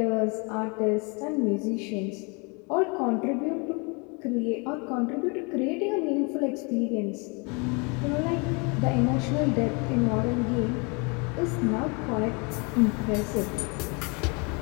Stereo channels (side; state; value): right; quieter; 31.9 dB